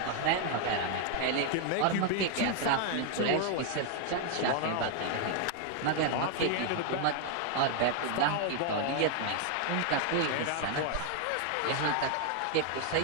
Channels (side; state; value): both; different; correlation 0.00